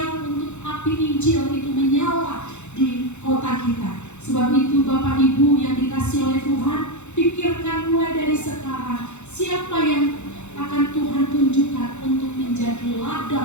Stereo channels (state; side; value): late; right; 0.83 ms